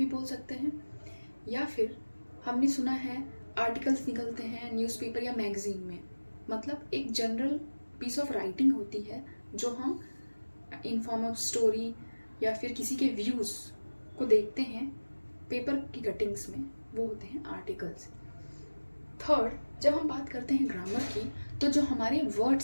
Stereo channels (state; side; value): inverted; both; correlation -1.00